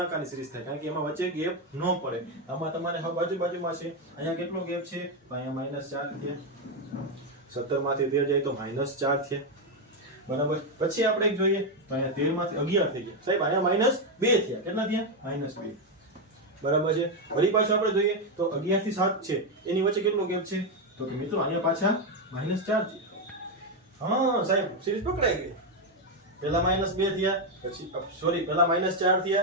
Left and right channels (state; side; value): normal; both; correlation 0.05